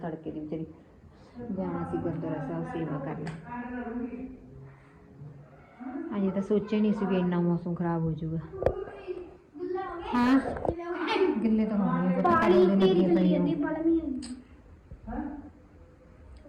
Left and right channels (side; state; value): both; identical; correlation 1.00